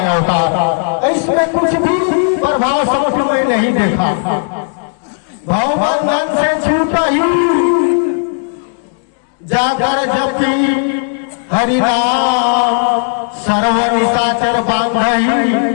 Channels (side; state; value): right; silent; digital silence